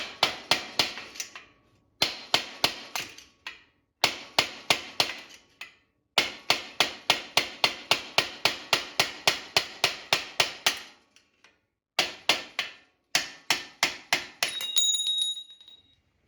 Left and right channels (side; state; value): both; identical; correlation 1.00